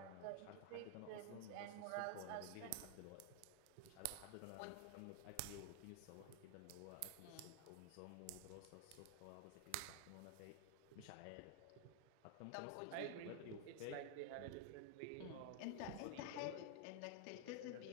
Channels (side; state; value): both; different; correlation 0.00